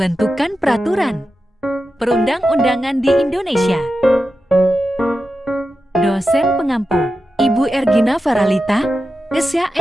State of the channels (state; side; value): normal; both; correlation 0.91